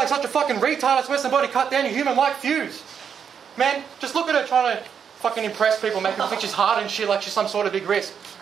such a fucking retard, I swear somebody cut down your human-like fuse. Man, just look at her trying to fucking impress people, making her think she's hard and shit like she's some sort of big risk.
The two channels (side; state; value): left; quieter; 7.3 dB